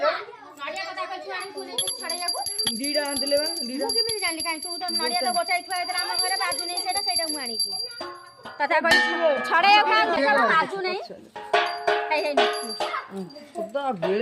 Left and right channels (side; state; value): both; identical; correlation 1.00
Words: नड़िया कथा कछु आनी तू नहीं छड़ैयाको ଦିଟା ଆଣିଥିଲେ ବା ଦିଟା ମୁଁ କେମିତି ଜାଣିଲି କାଇଁ ତୁ ତ ନଡିଆ ତ ଗୋଟାଇ ଥୁଆ ହେଇଥିଲା ଆମ ଘରେ ବାଜୁ ନାହିଁ ସେଇଟା ମୁଁ ଆଣିଛି କଥା କହି ଛଡେଇବାକୁ କାଇଁ ଦେଖା ବାଜୁ ନାହିଁ ହେଇ ହେଇ ସଦା